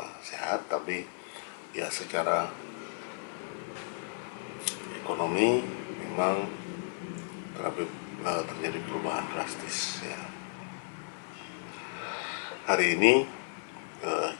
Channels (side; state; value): right; silent; 55 dB below the other